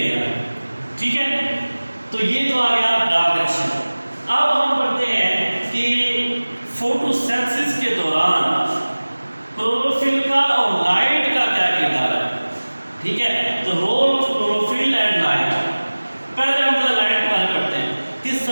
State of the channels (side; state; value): both; inverted; correlation -1.00